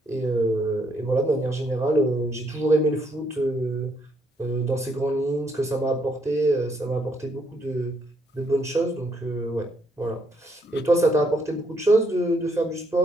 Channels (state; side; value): normal; both; correlation 0.73